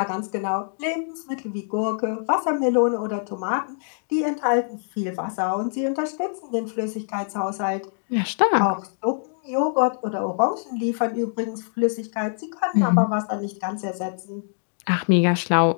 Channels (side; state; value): right; silent; digital silence